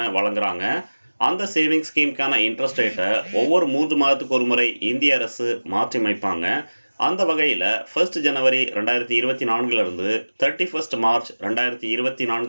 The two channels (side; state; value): both; inverted; correlation -1.00